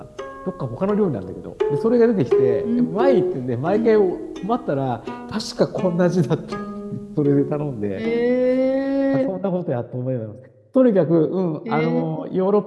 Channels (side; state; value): both; identical; correlation 1.00